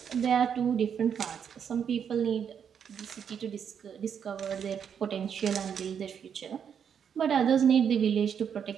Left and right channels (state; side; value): quieter; left; 7.8 dB